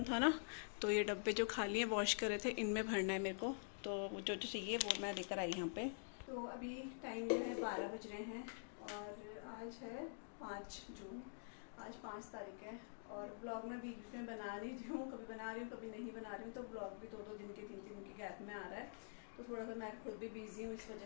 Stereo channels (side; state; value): right; silent; digital silence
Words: था ना, तो ये डब्बे जो खाली हैं वॉश करे थे, इनमें भरना है मेरे को। तो जो चाहिए वो मैं लेकर आई यहाँ पे। तो अभी टाइम जो है 12 बज रहे हैं और आज है 5 जून, आज 5 तारीख है। और ब्लॉग मैं बीच में बना रही हूँ, कभी बना रही हूँ कभी नहीं बना रही हूँ, तो ब्लॉग भी 2-2 दिन के 3-3 दिन के गैप में आ रहा है। तो थोड़ा सा मैं खुद भी बिजी हूँ इस